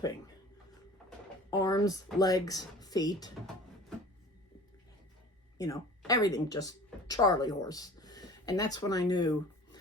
Arms, legs, feet, you know, everything, just Charlie horse. And that's when I knew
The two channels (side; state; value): both; normal; correlation 0.43